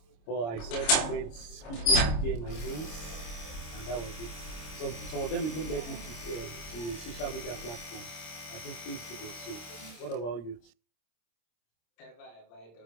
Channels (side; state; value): right; late; 26 ms